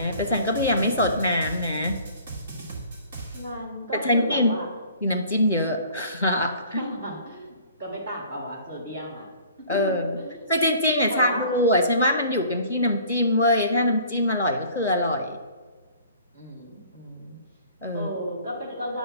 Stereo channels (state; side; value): inverted; both; correlation -0.50